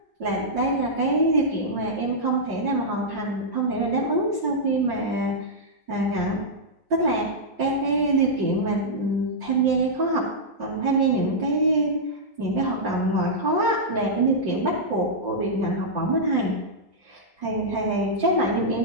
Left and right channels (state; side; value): late; left; 1.0 ms